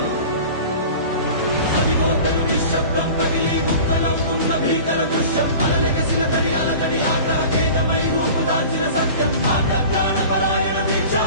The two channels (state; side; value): inverted; both; correlation -0.39